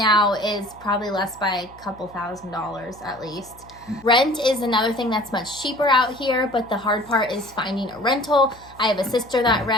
is probably less by a couple $1,000s at least. Rent is another thing that's much cheaper out here, but the hard part is finding a rental. I have a sister that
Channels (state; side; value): noise; left; hum, 24 dB below the sound